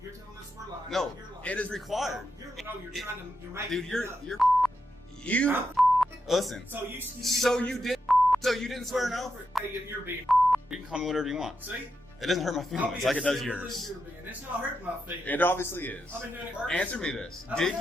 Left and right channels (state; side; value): normal; both; correlation 0.85